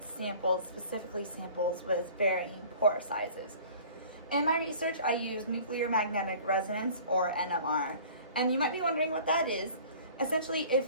samples, specifically samples with varying pore sizes. In my research, I use nuclear magnetic resonance, or NMR, and you might be wondering what that is. Essentially,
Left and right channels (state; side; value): inverted; both; correlation -0.47